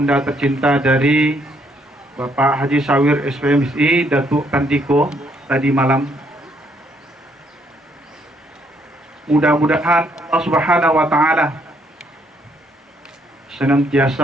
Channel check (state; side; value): normal; both; correlation 0.70